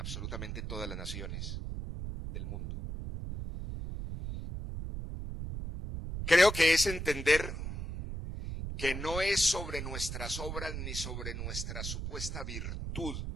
todas las naciones del mundo. Creo que es entender que no es sobre nuestras obras ni sobre nuestra supuesta virtud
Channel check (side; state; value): right; noise; rumble, 5 dB below the sound